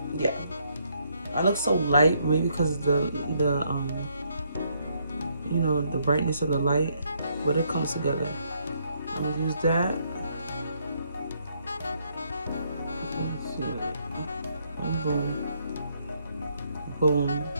Yeah. I look so light, maybe because the you know, the brightness of the light, but it comes together. I'm gonna use that. Boom, boom,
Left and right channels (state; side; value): inverted; both; correlation -0.72